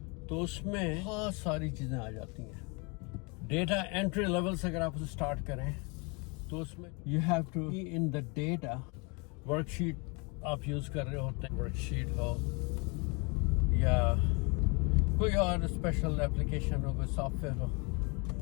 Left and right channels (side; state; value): right; quieter; 30.7 dB